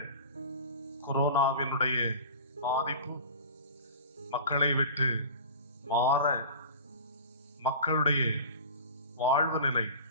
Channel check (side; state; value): both; inverted; correlation -0.36